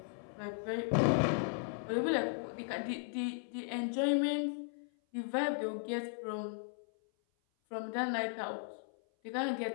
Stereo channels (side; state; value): right; silent; 54 dB below the other